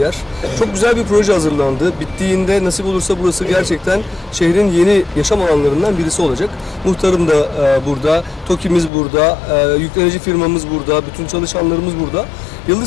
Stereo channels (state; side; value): drops out; right; at 8.9 s